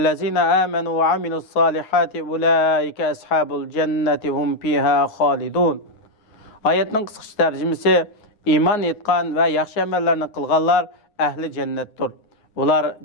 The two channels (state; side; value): late; right; 9.6 ms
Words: amanu ve amilus solihati ulaika ashabul jannati hum fiha xolidun." Oyatning qisqa tarjimasi: iymon etgan va yaxshi amallarni qilganlar ahli jannatdir. Ular